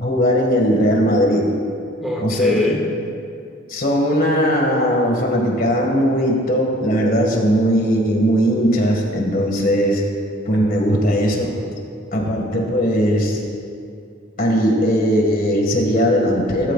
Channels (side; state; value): both; normal; correlation 0.54